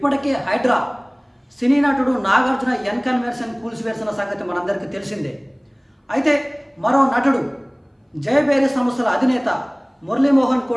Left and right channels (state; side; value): identical; both; correlation 1.00